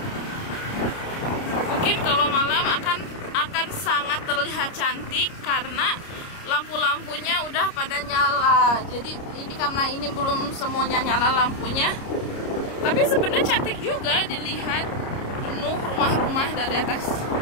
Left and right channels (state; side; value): late; right; 29 ms